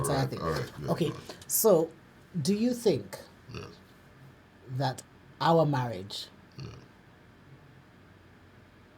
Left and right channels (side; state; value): both; identical; correlation 1.00